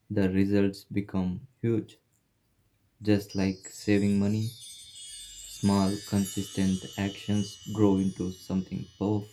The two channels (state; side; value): identical; both; correlation 1.00